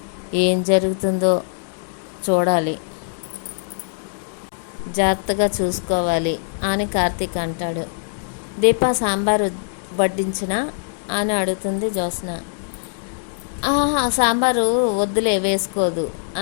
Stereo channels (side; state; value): right; silent; digital silence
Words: ఏం జరుగుతుందో చూడాలి, జాగ్రత్తగా చూసుకోవాలి అని కార్తీక్ అంటాడు. దీప సాంబారు వడ్డించినా అని అడుగుతుంది జ్యోత్స్న. సాంబారు వద్దులే, వేసుకోదు